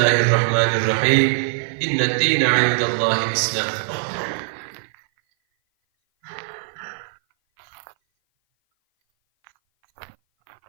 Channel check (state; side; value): silent; left; 57 dB below the other